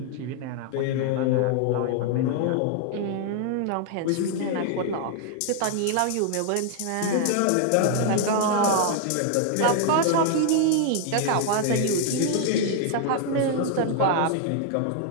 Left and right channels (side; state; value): both; different; correlation 0.00